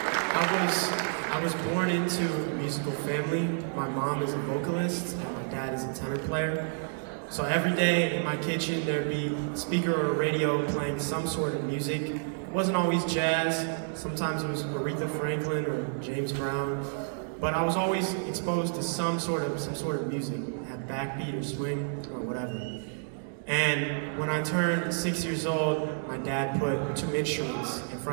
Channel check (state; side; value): silent; left; digital silence